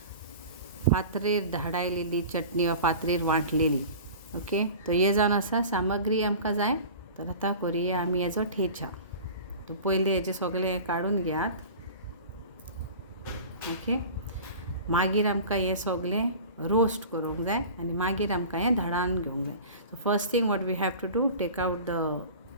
फातरीर धाडायलेली चटणी वा फातरीर वांटलेली. ओके, तो हे जावन आसा सामग्री आमकां जाय. तर आतां करुया आमी हेजो थेचा. तो पयलीं हेजें सगळें हें काडून घेयात. ओके, मागीर आमकां हें सगळें रोस्ट करूंक जाय आनी मागीर आमकां हें धाडान घेवंक जाय. So first thing what we have to do, take out the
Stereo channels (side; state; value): both; inverted; correlation -0.38